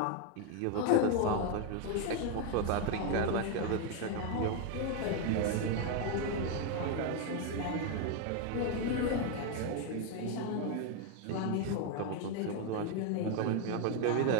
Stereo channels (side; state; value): both; different; correlation 0.01